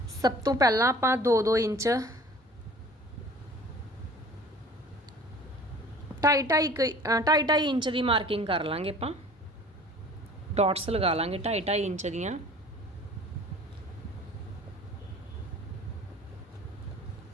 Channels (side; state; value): both; normal; correlation 0.47